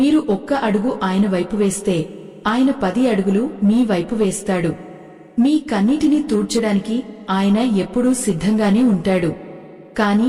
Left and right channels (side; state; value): both; identical; correlation 1.00